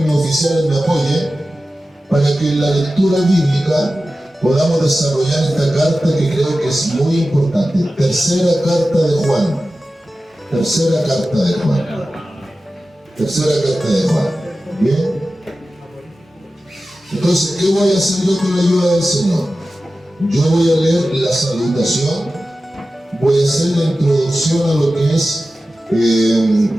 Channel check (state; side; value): normal; both; correlation 0.94